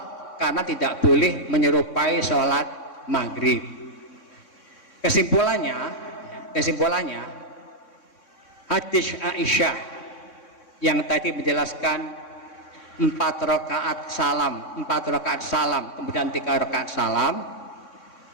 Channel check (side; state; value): right; late; 3.6 ms